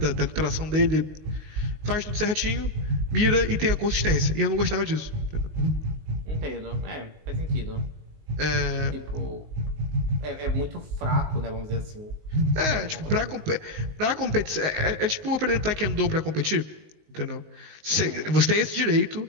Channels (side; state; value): left; late; 19 ms